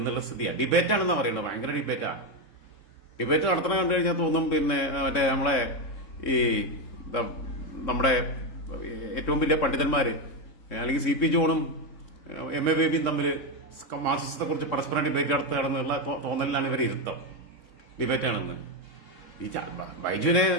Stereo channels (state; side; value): late; right; 3.6 ms